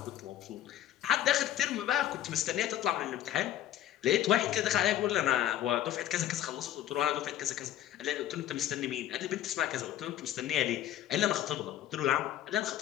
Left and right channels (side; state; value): right; quieter; 12.2 dB